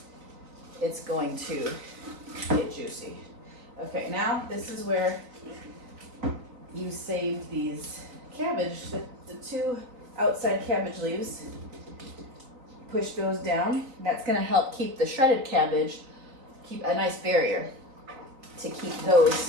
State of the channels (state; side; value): late; left; 4.0 ms